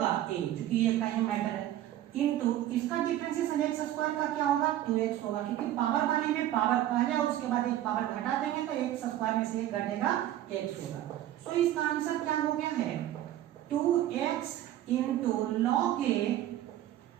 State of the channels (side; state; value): left; quieter; 13.0 dB